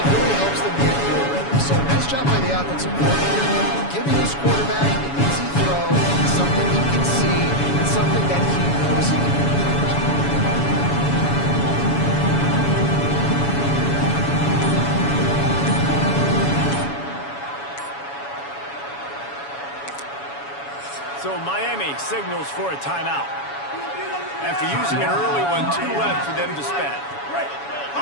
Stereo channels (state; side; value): late; right; 7.1 ms